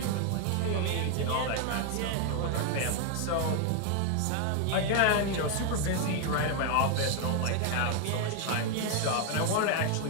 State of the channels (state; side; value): different; both; correlation 0.00